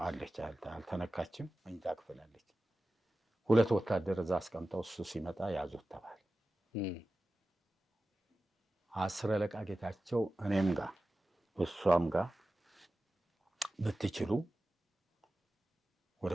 አለች፣ አልተነካችም። መኝታ ክፍል አለች። 2 ወታደር እዛ አስቀምጠው እሱ ሲመጣ ያዙት ተባለ። 10 አለቃ ጌታቸው እኔም ጋር እሷም ጋር ብትችሉ ወደ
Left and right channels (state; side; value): normal; both; correlation 0.95